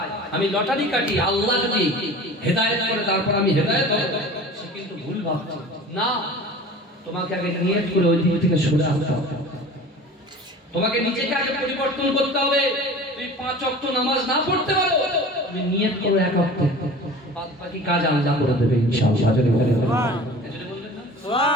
আমি লটারি কাটি, আল্লাহ যদি হেদায়েত করে তারপর আমি হেদায়েত হব, সে কিন্তু ভুল ভাবছে। না, তোমাকে আগে নিয়ত করে ওই দিক থেকে সরে আসতে হবে। তোমাকে নিজেকে আগে পরিবর্তন করতে হবে। তুমি 5 ওয়াক্ত নামাজ না পড়তে পারো, তুমি নিয়ত করো 1 ওয়াক্ত, বাদ বাকি কাজ আল্লাহ করে দেবে ইনশাআল্লাহ। যদি বলেন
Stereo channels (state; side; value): normal; both; correlation 0.40